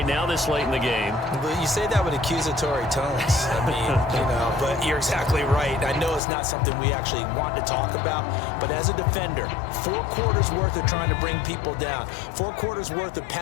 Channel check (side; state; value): right; drops out; at 6.2 s